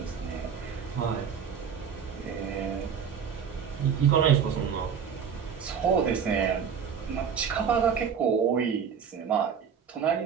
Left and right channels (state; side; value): quieter; left; 7.2 dB